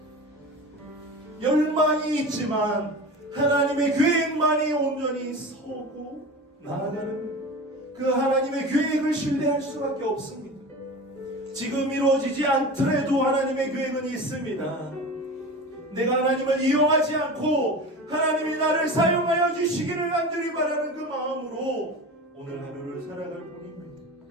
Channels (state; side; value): normal; both; correlation 0.32